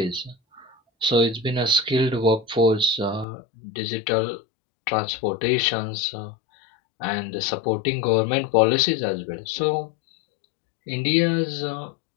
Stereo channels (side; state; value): right; drops out; at 3.2 s